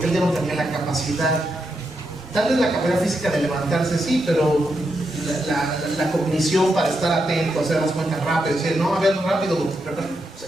él ya no tenía la capacidad, tal vez la capacidad física de levantarse sí, pero la cognición para estar atento, hacer las cuentas rápido, decir, no, a ver, rápido,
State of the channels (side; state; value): both; normal; correlation 0.84